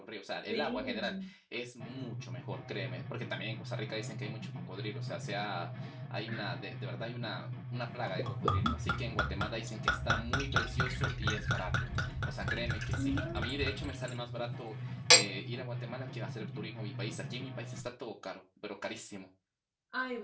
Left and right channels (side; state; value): both; identical; correlation 1.00